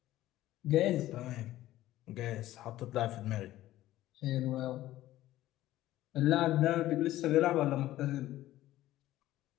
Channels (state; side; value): quieter; right; 15.0 dB